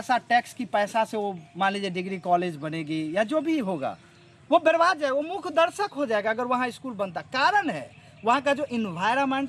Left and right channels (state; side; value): identical; both; correlation 1.00